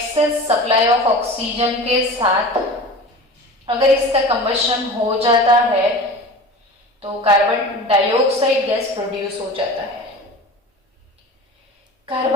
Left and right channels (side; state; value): both; normal; correlation 0.36